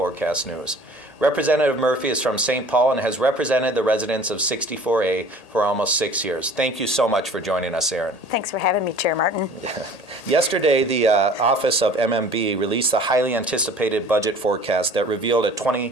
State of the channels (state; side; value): late; right; 1.8 ms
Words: news. Representative Murphy is from St. Paul and has represented the residents of 64A for almost 6 years. Thank you so much for joining us, Erin. Thanks for having me, Chair Martin. Yesterday, the Office of MMB released the highly anticipated budget forecast that revealed a